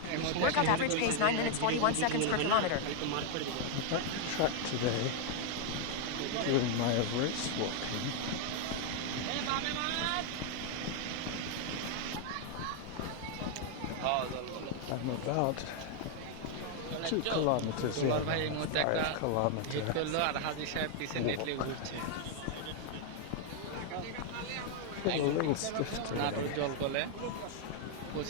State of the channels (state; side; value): different; both; correlation 0.00